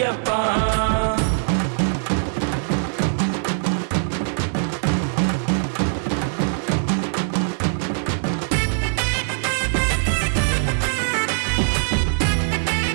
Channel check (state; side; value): silent; left; digital silence